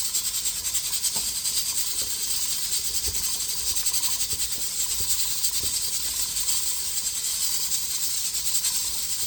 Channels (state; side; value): identical; both; correlation 1.00